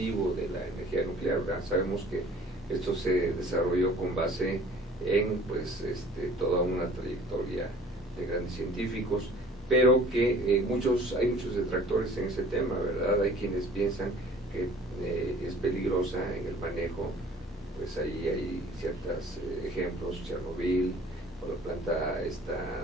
de la energía nuclear? ¿Verdad? Sabemos que esto se desarrolló con base en toda una trayectoria de grandes científicos, pero que hay muchos detractores en ese tema, ¿verdad? Hay quienes piensan que es peligrosa en el manejo. Pues ahí hay ciertos ejemplos, Chernobyl, o la planta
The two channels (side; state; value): both; normal; correlation 0.51